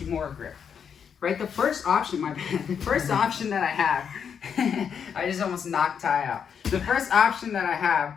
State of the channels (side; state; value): right; quieter; 7.3 dB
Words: grip, right, the first option, the first option that I have, I just almost knocked Ty out. The first option that I have